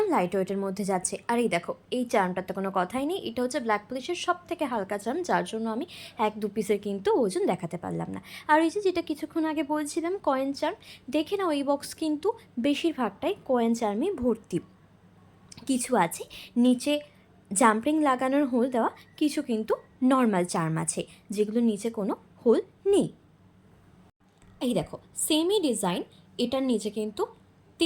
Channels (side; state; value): both; identical; correlation 1.00